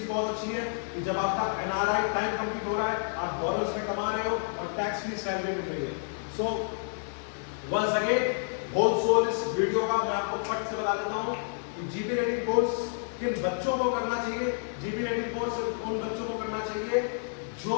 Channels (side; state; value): right; silent; digital silence